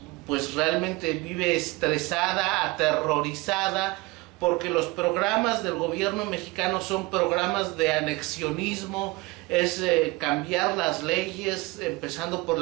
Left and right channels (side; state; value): left; quieter; 23.3 dB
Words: pues realmente vive estresada, aterrorizada, porque los programas del gobierno mexicano son programas de anexionismo, es cambiar las leyes, empezando por